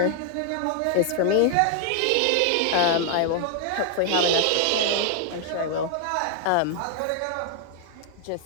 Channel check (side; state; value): both; different; correlation 0.00